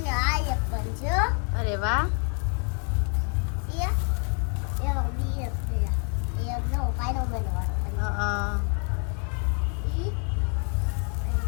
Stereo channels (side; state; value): right; quieter; 39.5 dB